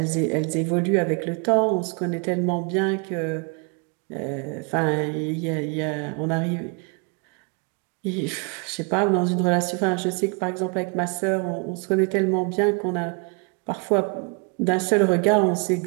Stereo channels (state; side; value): quieter; left; 35.4 dB